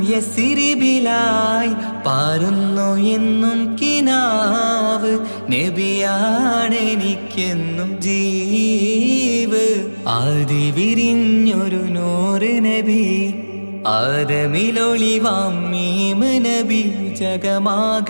യസിരിബിലായി പാരുന്നു എന്നും കിനാവ് നബിയാണെനിക്കെന്നും ജീവ് ആദി വിരിഞ്ഞൊരു നൂറ് നബി ആദമിലൊളിവാം മീമ് നബി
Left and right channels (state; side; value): inverted; both; correlation -1.00